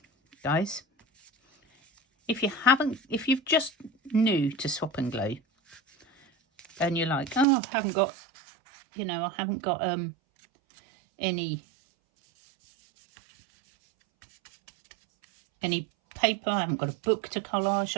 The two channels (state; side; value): drops out; left; at 7.5 s